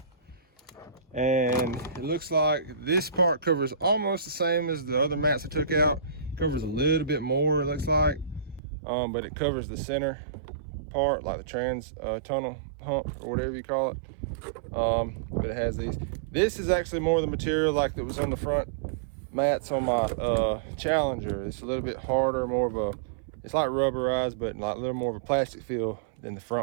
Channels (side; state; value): left; drops out; at 8.6 s